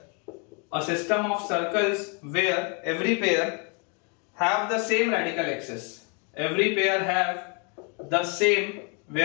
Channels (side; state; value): right; quieter; 35.3 dB